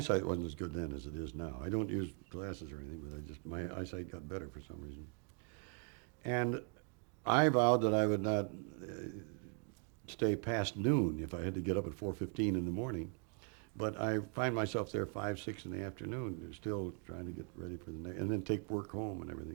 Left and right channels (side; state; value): left; quieter; 38.1 dB